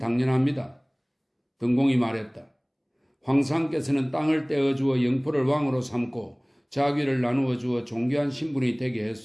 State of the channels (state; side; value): identical; both; correlation 1.00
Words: 등공이 말했다. 황상께서는 땅을 떼어주어 영포를 왕으로 삼고 자귀를 나누어 주어 존귀한 신분이 되게